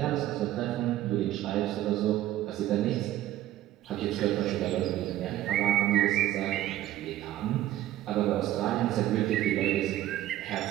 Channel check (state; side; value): quieter; left; 13.8 dB